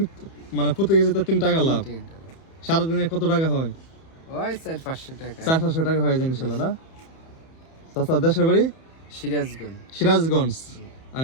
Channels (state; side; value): late; right; 31 ms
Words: মানে প্রতি কেজিতে 3 টাকা লাভ। সারাদিনে কত টাকা হয়? ওই 400-500 টাকা। 400-500 টাকা হয়ে যায় ইনশাল্লাহ না? চাচা দেশের বাড়ি? সিরাজগঞ্জ। সিরাজগঞ্জ।